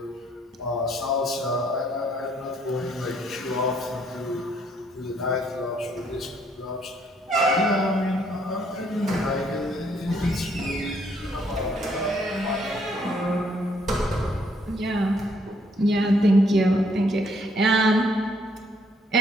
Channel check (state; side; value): normal; both; correlation 0.68